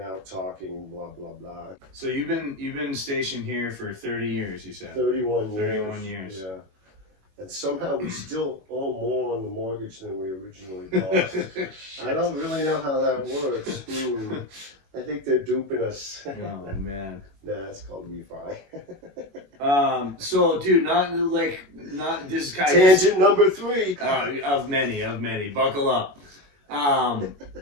out, talking, blah blah blah. So you've been stationed here for 30 years, you said. 31 years. 31 years. Yeah. And somehow we still owe more on the mortgage than we originally bought. I don't really know how that works. I think they're duping us. Oh man. Nah, it's called refi. So dude, not this is kind of tangent number 3. Of many. Buckle up. No,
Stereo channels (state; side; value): late; left; 21 ms